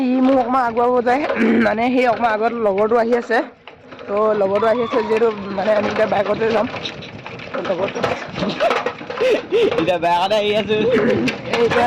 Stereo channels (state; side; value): identical; both; correlation 1.00